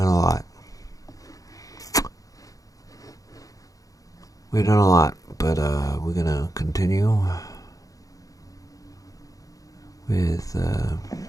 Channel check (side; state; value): right; late; 0.17 ms